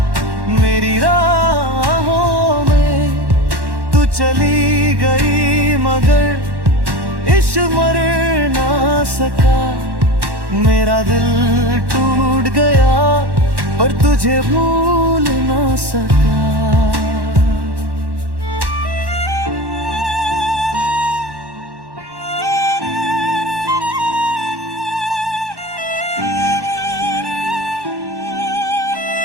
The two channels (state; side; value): late; left; 1.1 ms